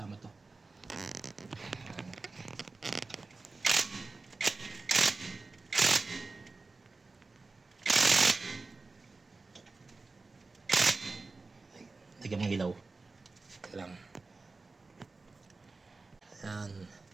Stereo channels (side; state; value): left; quieter; 3.7 dB